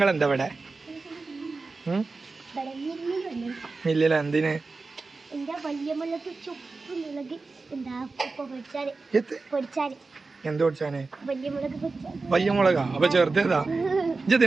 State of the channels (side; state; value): left; quieter; 3.9 dB